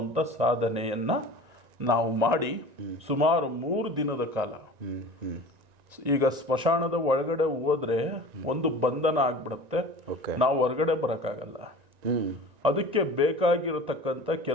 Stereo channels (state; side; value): late; left; 1.9 ms